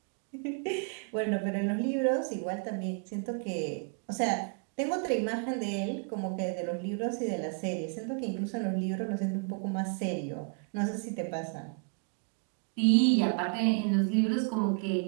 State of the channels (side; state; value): left; quieter; 37.8 dB